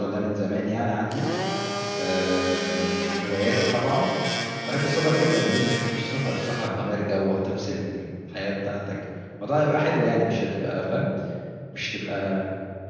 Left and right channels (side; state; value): both; identical; correlation 1.00